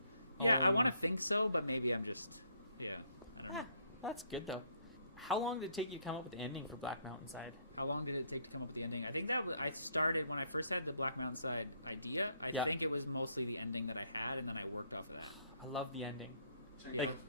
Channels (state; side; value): inverted; both; correlation -0.69